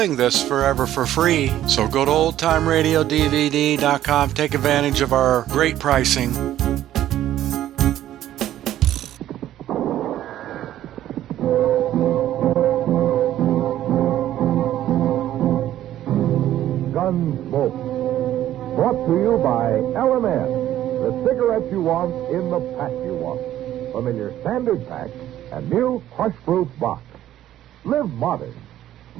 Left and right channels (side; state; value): left; quieter; 12.7 dB